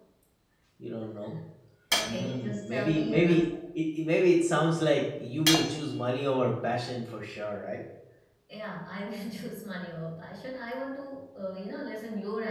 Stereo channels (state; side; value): identical; both; correlation 1.00